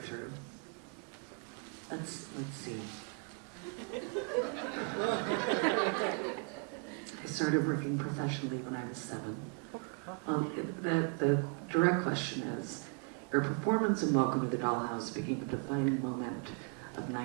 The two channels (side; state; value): left; quieter; 36.7 dB